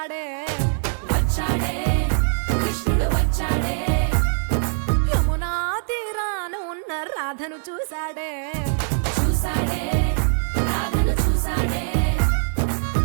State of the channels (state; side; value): silent; left; digital silence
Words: కృష్ణుడు వచ్చాడే యమునా తీరాన ఉన్న రాధను చూశాడే రాధను చూసాడే